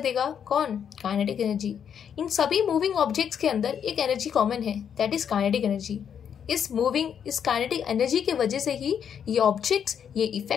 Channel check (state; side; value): quieter; right; 8.1 dB